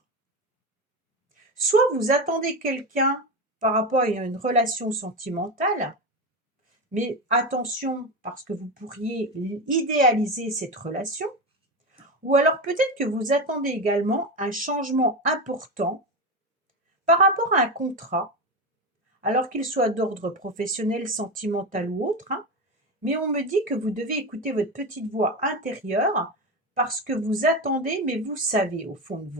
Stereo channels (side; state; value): both; normal; correlation 0.18